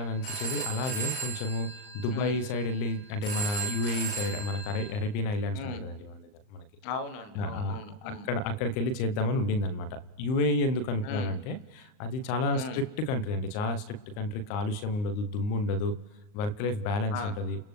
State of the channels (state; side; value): late; right; 39 ms